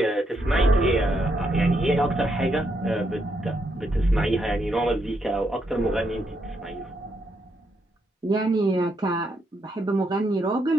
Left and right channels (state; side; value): normal; both; correlation 0.78